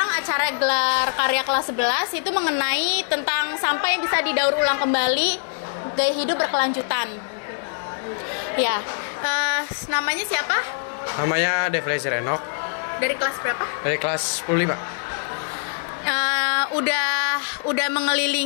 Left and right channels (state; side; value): silent; right; digital silence